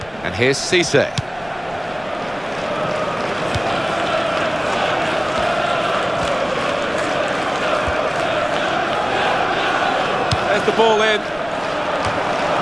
And here's Cisse. There's the ball in.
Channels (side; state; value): left; noise; rumble, 24 dB below the sound